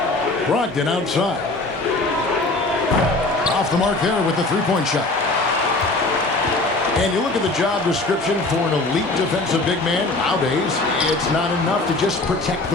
Brogdon outside. Off the mark there with the three-point shot. And you look at the job description for an elite defensive big man. Nowadays, it's not enough to just protect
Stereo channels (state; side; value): quieter; right; 3.1 dB